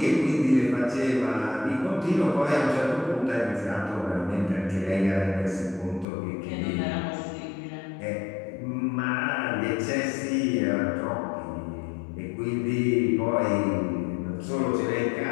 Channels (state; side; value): drops out; right; at 6.1 s